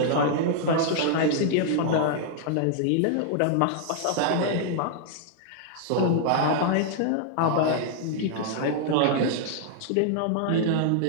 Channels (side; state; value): both; different; correlation -0.01